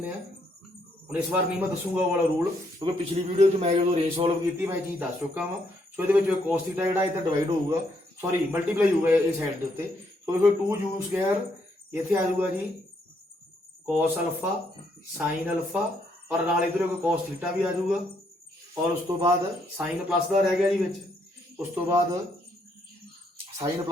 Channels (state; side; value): normal; both; correlation 0.73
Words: आ। हुण इस बार नहीं मैं दसूंगा वो वाला रूल, क्योंकि पिछली वीडियो मैं जो रेंज सॉल्व की मैं चीज़ दस चुका वा। सो ये cos थीटा जो इधर डिवाइड होगा, सॉरी मल्टीप्लाई होगा इस साइड के उत्ते। सो देखो 2 u स्क्वायर इत्थे आ जाऊगा जी cos अल्फा sin अल्फा और नाल इधर cos थीटा भी आ जाऊगा। और उस तो बाद साइन प्लस का रह गया जी विच। उस तो बाद साइन